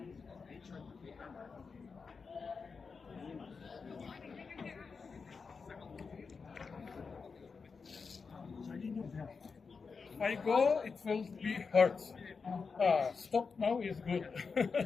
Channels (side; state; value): right; quieter; 5.1 dB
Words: I go, it will be hurt. Stop now is good.